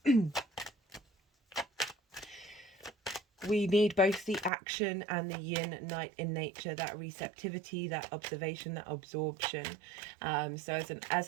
we need both the action and the yin night in nature, that receptivity, that observation, that absorption. So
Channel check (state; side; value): drops out; left; at 4.5 s